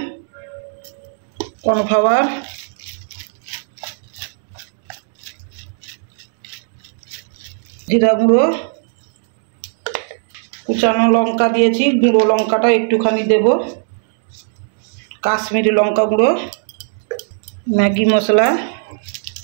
কর্নফ্লাওয়ার, জিরা গুঁড়ো, কুচানো লঙ্কা দিয়েছি, গুঁড়ো লঙ্কাটা একটুখানি দেব, কাশ্মীরি লঙ্কা গুঁড়ো, ম্যাগি মশলা,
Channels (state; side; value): silent; left; digital silence